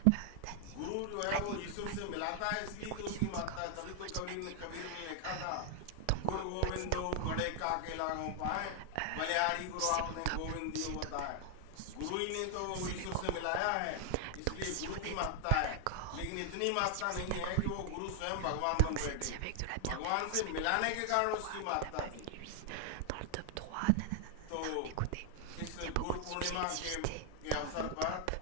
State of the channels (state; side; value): different; both; correlation 0.00